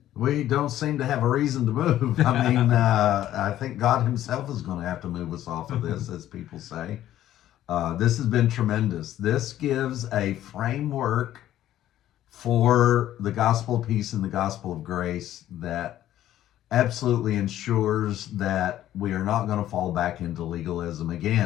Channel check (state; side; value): quieter; right; 12.7 dB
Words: We don't seem to have a reason to move. I think God himself is going to have to move us off of this, as people say. This has been tremendous. This gives a framework for the gospel of peace and the gospel of grace that absolutely ensures that we are not going to fall back into legalism